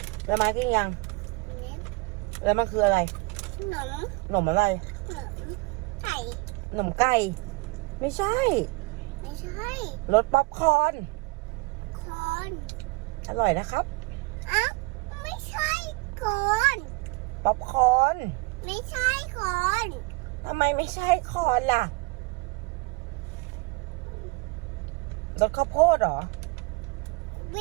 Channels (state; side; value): quieter; left; 25.7 dB